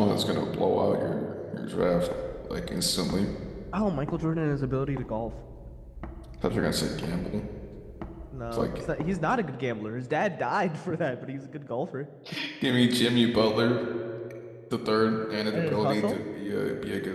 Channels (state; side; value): identical; both; correlation 1.00